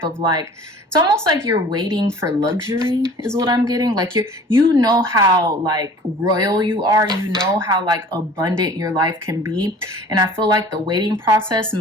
of like, it's almost like you're waiting for luxury is what I'm getting. Like you know how like royal you are, you know how like abundant your life can be. And I feel like the waiting process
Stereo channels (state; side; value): normal; both; correlation 0.46